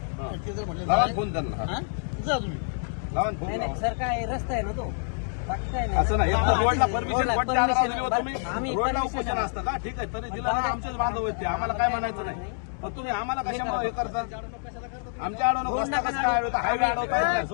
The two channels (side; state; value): right; silent; 60 dB below the other